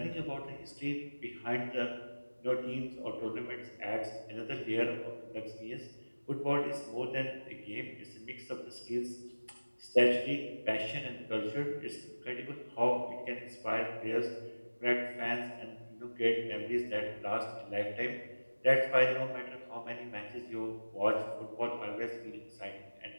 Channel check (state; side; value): inverted; both; correlation -1.00